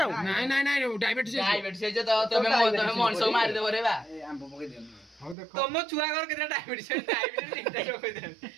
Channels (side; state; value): left; drops out; at 5.4 s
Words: ଆଉ ନାଇଁ ନାଇଁ ନାଇଁ ଡାଇବେଟିସ୍ ମଣିଷ ମାରିଦେବ ରେ ବା ଆମ୍ବ ପକେଇ ଦିଅ ହଉ ଦେଖ ତମ ଛୁଆ ଘର କେତେ ଡାଇବେଟିସ୍